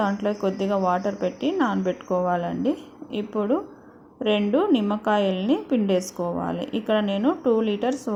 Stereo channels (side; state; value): both; identical; correlation 1.00